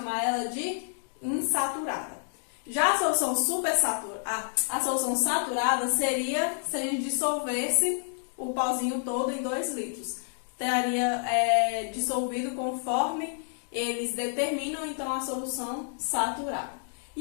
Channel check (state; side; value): silent; right; digital silence